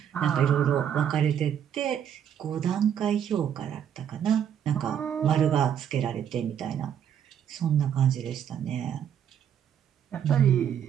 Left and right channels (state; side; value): quieter; left; 9.1 dB